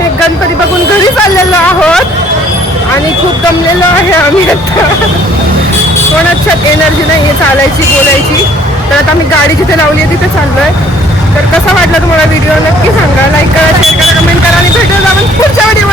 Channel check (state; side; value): normal; both; correlation 0.58